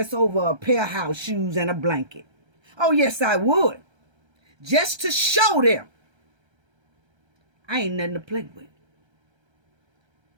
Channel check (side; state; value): left; late; 1.3 ms